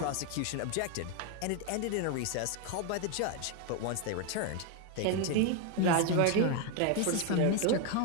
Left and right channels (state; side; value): different; both; correlation 0.01